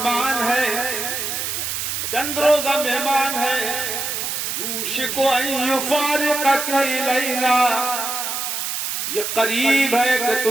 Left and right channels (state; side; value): noise; right; hiss, 3 dB below the sound